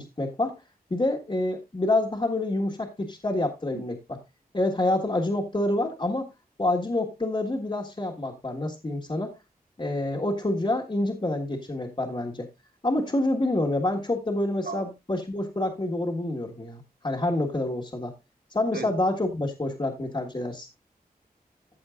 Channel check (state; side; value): normal; both; correlation 0.75